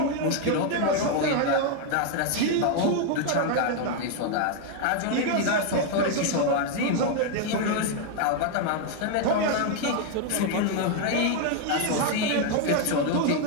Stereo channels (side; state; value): both; different; correlation 0.01